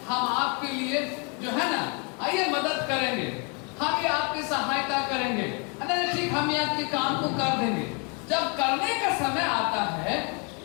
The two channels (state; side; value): quieter; right; 35.1 dB